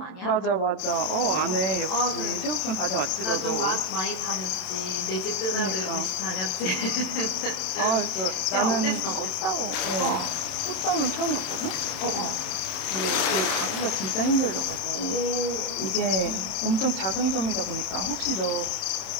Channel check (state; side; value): late; right; 28 ms